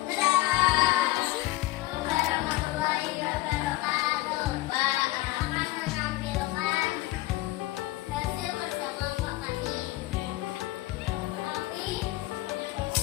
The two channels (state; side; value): quieter; right; 18.6 dB